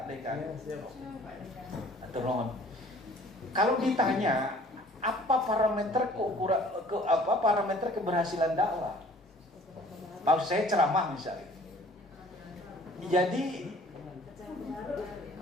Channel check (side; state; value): both; normal; correlation 0.52